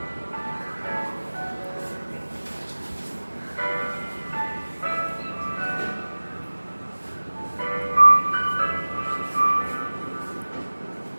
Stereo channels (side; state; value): both; inverted; correlation -1.00